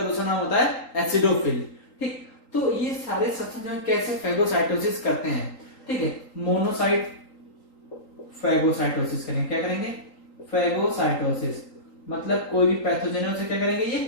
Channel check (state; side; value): late; right; 3.8 ms